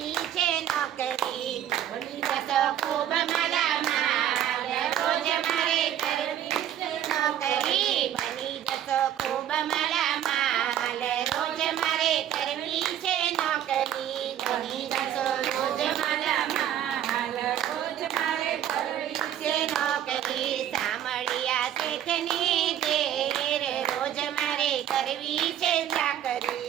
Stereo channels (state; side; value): quieter; left; 10.8 dB